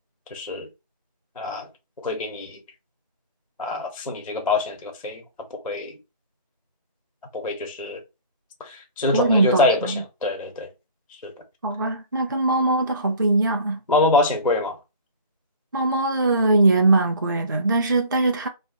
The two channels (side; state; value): both; inverted; correlation -0.42